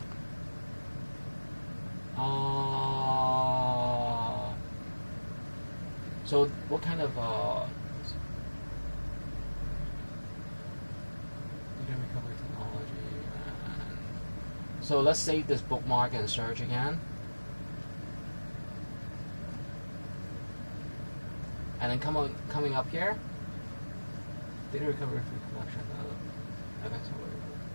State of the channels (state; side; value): inverted; both; correlation -1.00